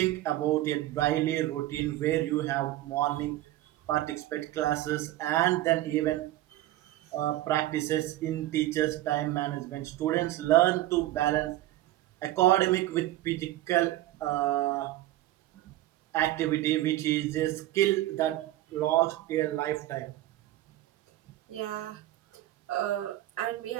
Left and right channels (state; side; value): quieter; left; 15.4 dB